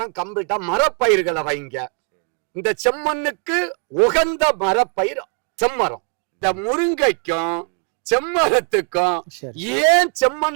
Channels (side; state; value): left; quieter; 39.8 dB